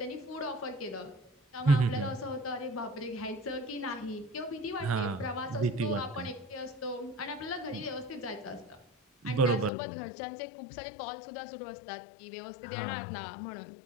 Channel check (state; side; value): drops out; right; at 9.7 s